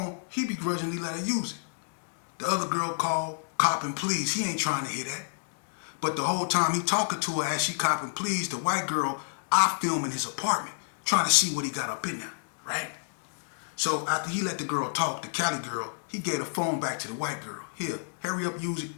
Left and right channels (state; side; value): silent; right; digital silence